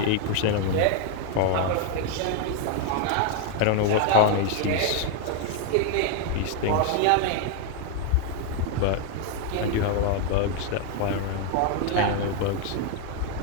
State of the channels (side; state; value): both; different; correlation 0.01